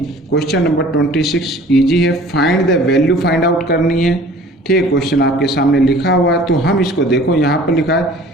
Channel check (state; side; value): normal; both; correlation 0.48